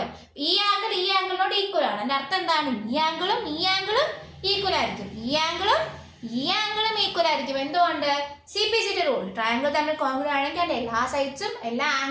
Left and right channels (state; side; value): identical; both; correlation 1.00